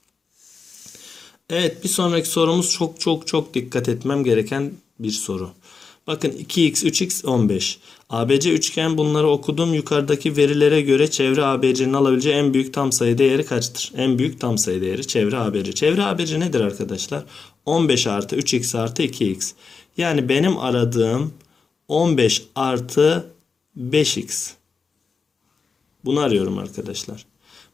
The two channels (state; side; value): quieter; right; 5.1 dB